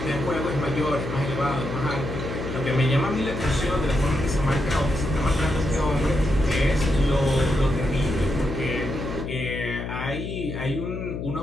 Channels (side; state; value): left; noise; hum, 6 dB below the sound